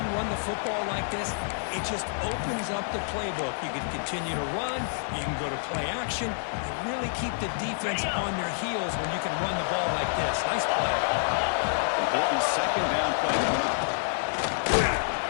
run the football like this, it just opens up the playbook. You can continue to run. You can go to play action. You really keep the defense on their heels when you can run the ball like this. Nice play. Important second down play coming up.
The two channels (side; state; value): right; silent; 59 dB below the other